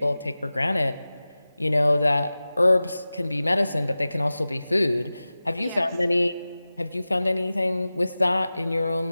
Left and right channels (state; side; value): inverted; both; correlation -0.96